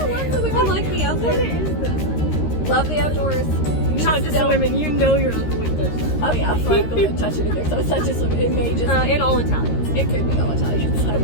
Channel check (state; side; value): late; right; 13 ms